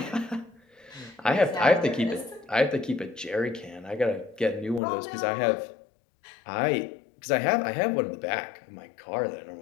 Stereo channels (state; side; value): drops out; right; at 4.8 s